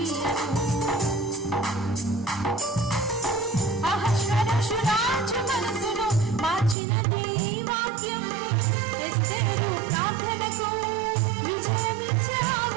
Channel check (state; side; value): drops out; left; at 6.8 s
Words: అహష్వేరోషు రాజు మనసును మార్చినది వాక్యం, ఎస్తేరు ప్రార్థనకు విజయమిచ్చే ఆ